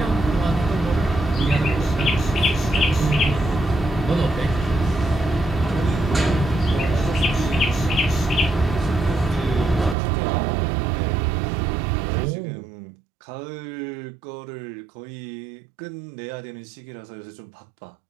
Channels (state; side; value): drops out; left; at 10.0 s